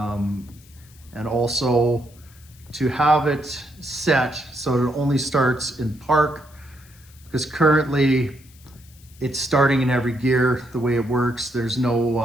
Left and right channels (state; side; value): noise; left; hiss, 26 dB below the sound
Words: also to have it set so it only starts in park, because currently it's starting in every gear. The way it works, there's